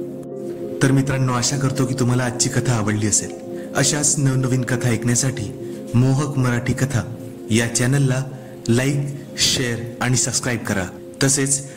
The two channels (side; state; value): both; identical; correlation 1.00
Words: तर मित्रांनो, आशा करतो की तुम्हाला आजची कथा आवडली असेल. अशाच नवनवीन कथा ऐकण्यासाठी मोहक मराठी कथा या चॅनलला लाईक, शेअर आणि सबस्क्राईब करा. तसेच